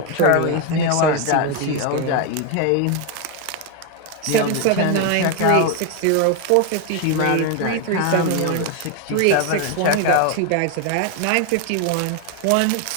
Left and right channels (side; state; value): both; different; correlation 0.01